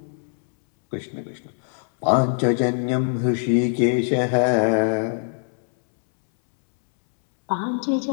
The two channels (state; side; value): silent; right; 64 dB below the other